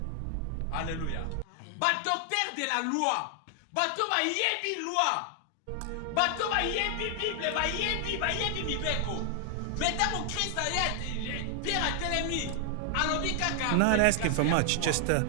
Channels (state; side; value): different; both; correlation 0.00